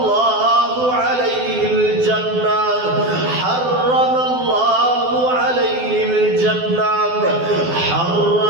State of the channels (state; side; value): late; left; 12 ms